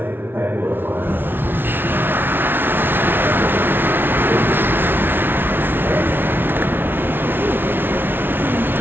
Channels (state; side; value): late; left; 0.10 ms